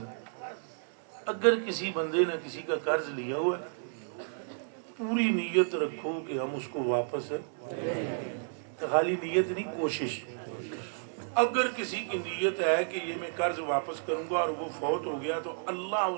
اگر کسی بندے نے کسی کا قرض لیا ہوا ہے پوری نیت رکھو کہ ہم اس کو واپس خالی نیت نہیں کوشش. اگر کسی کی نیت ہے کہ یہ میں قرض واپس کروں گا اور وہ فوت ہو گیا تو اللہ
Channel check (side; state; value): left; silent; digital silence